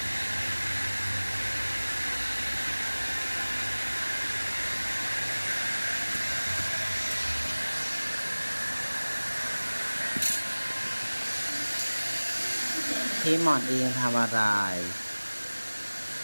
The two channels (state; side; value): inverted; both; correlation -1.00